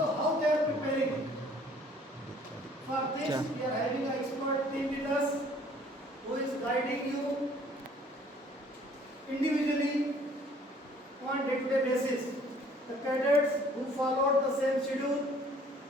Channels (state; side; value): normal; both; correlation 0.57